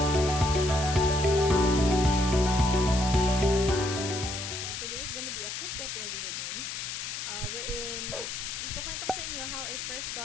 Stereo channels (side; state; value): left; noise; hiss, 6 dB below the sound